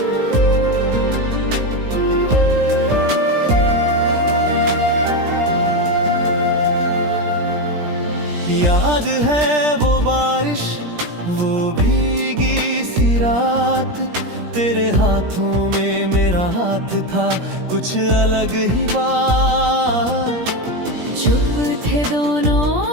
याद है वो बारिश, वो भीगी सी रात, तेरे हाथों में मेरा हाथ था, कुछ अलग ही बात। चुप थे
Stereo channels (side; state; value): left; late; 17 ms